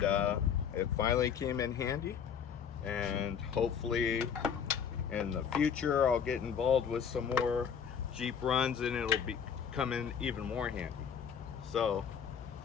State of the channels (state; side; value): quieter; right; 7.5 dB